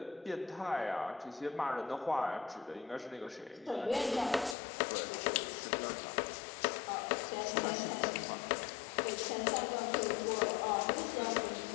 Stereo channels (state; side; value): drops out; right; at 4.5 s